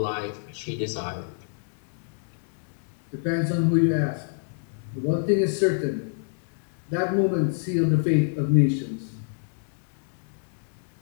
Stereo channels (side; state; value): right; silent; 60 dB below the other